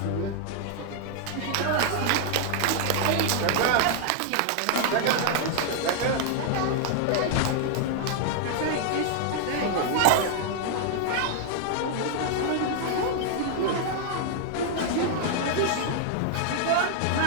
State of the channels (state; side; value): different; both; correlation 0.00